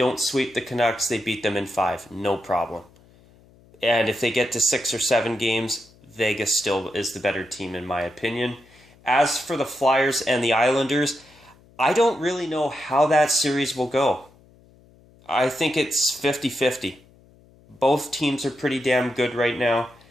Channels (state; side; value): noise; left; hum, 28 dB below the sound